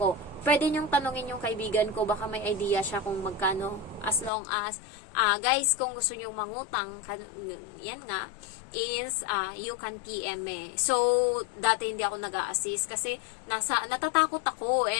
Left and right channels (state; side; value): drops out; right; at 4.3 s